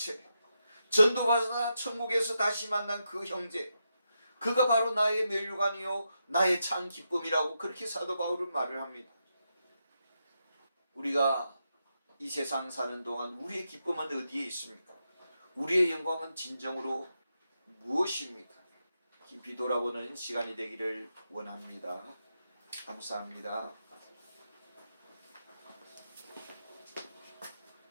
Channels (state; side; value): inverted; both; correlation -0.85